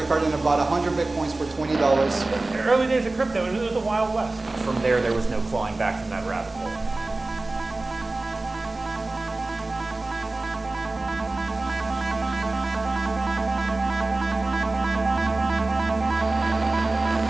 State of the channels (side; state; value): left; quieter; 3.1 dB